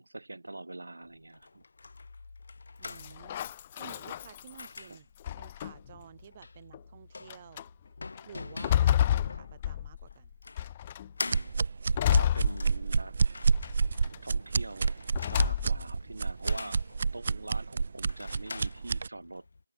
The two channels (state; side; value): inverted; both; correlation -0.75